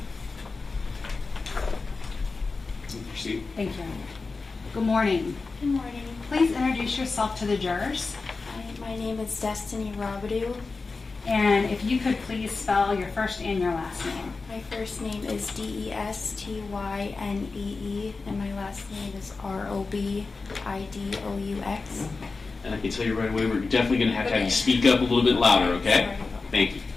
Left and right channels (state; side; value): quieter; right; 4.1 dB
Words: Proceed. Thank you. Good morning. Good morning. Please introduce yourself to the jurors. My name is Destiny Robu. And if you could please spell your first and your last name. My first name is Destynee, and my last name is Robidous. And I can tell you right away, we're definitely going to have you speak up a little bit louder, okay? Thank you.